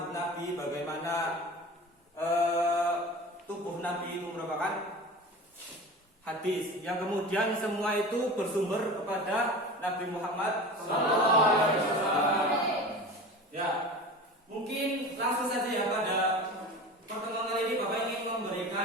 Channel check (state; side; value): normal; both; correlation 0.34